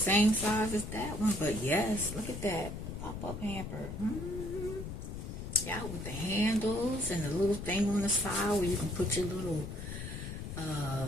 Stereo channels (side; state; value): left; noise; rumble, 7 dB below the sound